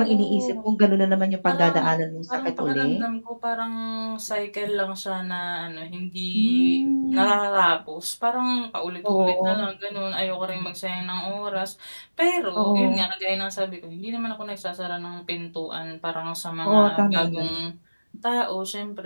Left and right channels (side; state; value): both; inverted; correlation -1.00